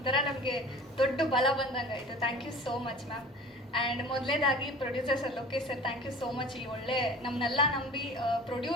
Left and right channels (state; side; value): normal; both; correlation 0.41